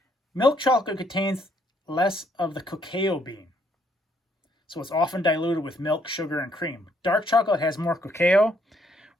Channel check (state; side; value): normal; both; correlation 0.70